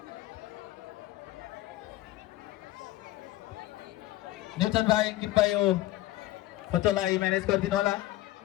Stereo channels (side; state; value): right; quieter; 16.2 dB